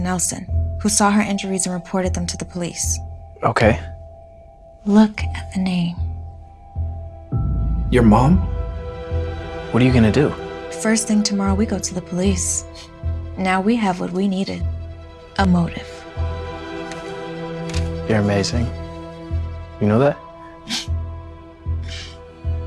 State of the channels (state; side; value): identical; both; correlation 1.00